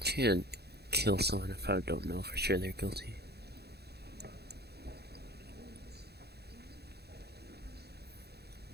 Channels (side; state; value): left; late; 0.47 ms